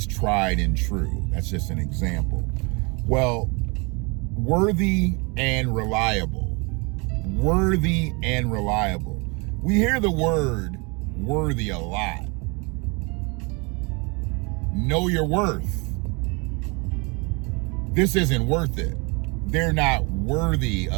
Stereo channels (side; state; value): left; quieter; 30.1 dB